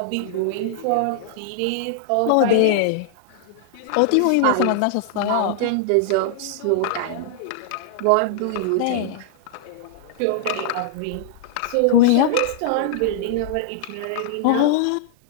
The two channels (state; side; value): different; both; correlation -0.01